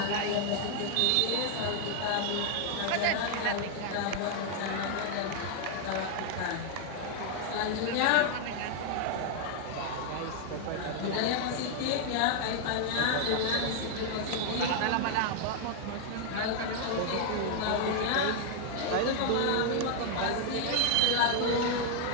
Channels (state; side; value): different; both; correlation 0.00